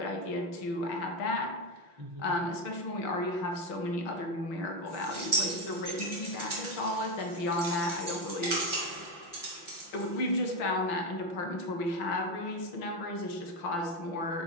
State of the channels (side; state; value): right; late; 5.9 ms